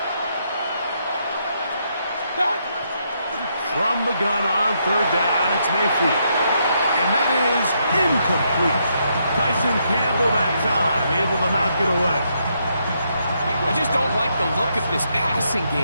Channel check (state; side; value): inverted; both; correlation -0.77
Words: From the gun on 3rd down, it's Mayfield. And that is incomplete. Tyson Campbell that time, able to knock it away. I just don't like the look of this passing